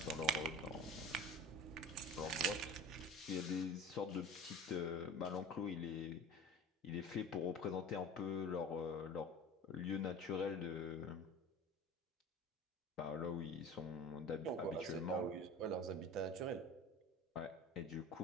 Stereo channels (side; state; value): both; normal; correlation 0.37